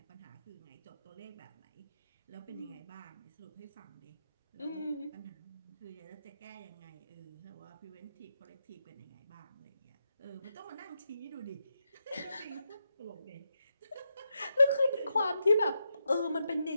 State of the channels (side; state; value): both; inverted; correlation -0.85